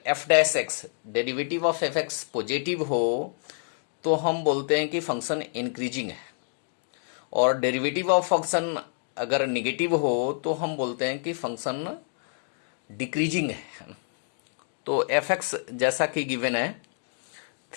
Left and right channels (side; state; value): right; silent; digital silence